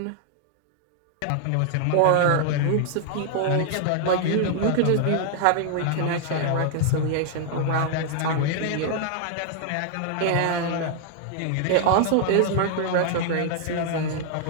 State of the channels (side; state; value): both; different; correlation 0.00